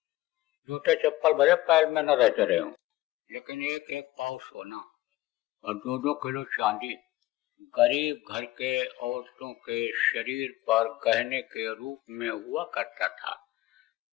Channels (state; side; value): quieter; right; 17.2 dB